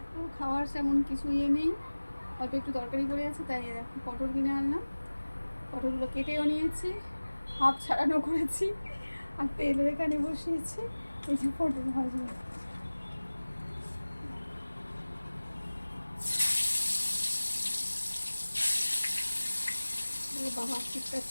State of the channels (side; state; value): both; inverted; correlation -1.00